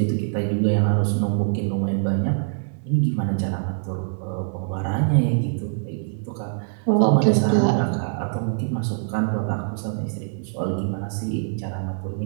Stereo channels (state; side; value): silent; left; 60 dB below the other